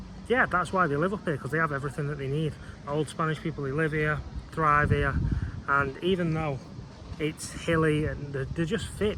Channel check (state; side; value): identical; both; correlation 1.00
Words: yeah, that's why they live up here, because they have everything that they need. Old Spanish people, they live here, thrive here, and even though it's hilly and they're just fit